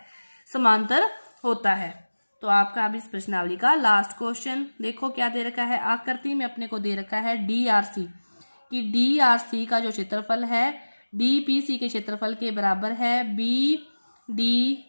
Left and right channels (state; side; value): inverted; both; correlation -1.00